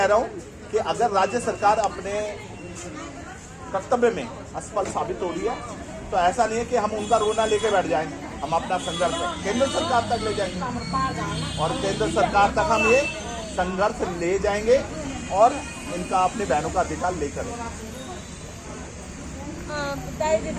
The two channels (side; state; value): both; identical; correlation 1.00